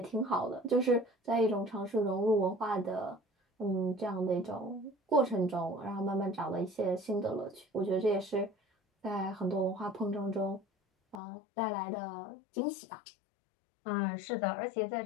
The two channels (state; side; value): drops out; right; at 11.2 s